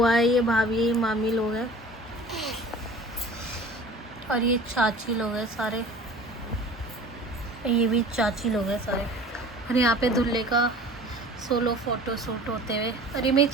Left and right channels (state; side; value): normal; both; correlation 0.43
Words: है, ये भाभी, ये मामी लोग हैं और ये चाची लोग हैं सारे, ये भी चाची लोग हैं सारे। और यहाँ पे दूल्हे का सोलो फोटो शूट होते हुए। और ये मेरी